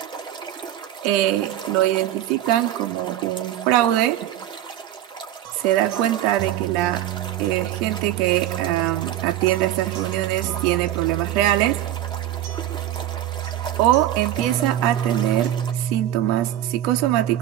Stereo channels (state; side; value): quieter; left; 12.8 dB